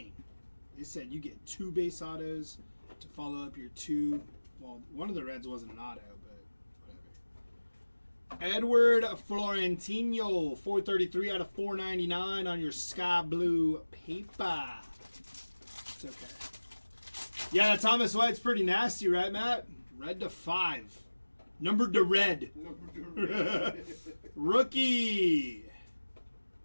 They said you get 2 base autos to follow up your 2. Well, one of the Reds wasn't an auto, but whatever. Edward Florentino, 433 out of 499 on your sky blue paper. It's okay. Yeah, that Thomas White's pretty nasty, right, Matt? Red to 5. Numbered to red. Number 2. Rookie.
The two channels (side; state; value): both; inverted; correlation -1.00